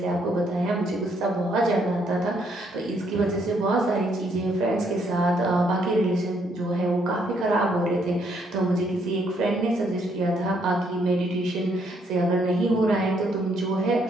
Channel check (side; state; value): both; normal; correlation 0.71